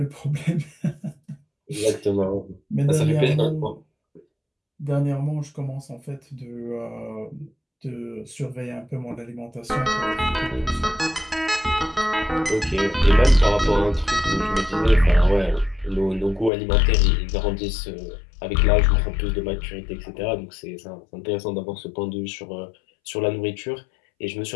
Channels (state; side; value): drops out; right; at 16.5 s